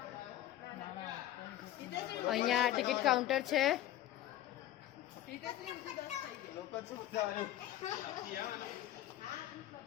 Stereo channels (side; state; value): right; quieter; 13.3 dB